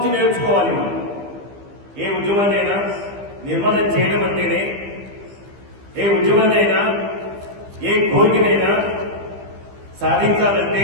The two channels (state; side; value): late; left; 15 ms